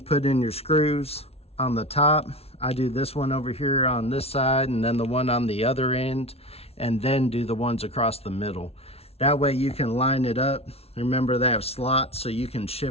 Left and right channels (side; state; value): right; late; 0.30 ms